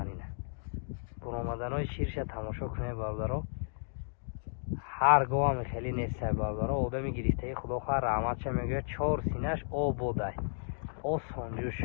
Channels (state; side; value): silent; right; digital silence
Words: ина буромаданои ширша тамошо кунед бародаро. ҳар гоҳам хеле нестай бародаро. одами гирифтаи худо хоҳад раҳматша мегӯяд 4 синаш ободай осонҷӯш.